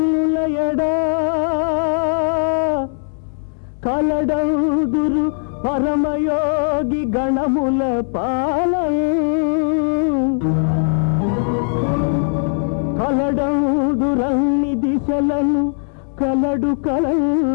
కలడందురు పరమయోగి గణముల పాలం కలడందురన్ని దిశలను కలడు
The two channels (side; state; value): right; silent; digital silence